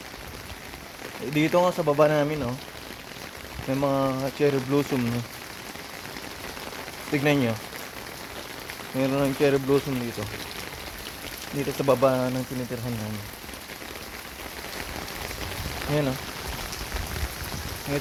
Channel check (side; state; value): both; identical; correlation 1.00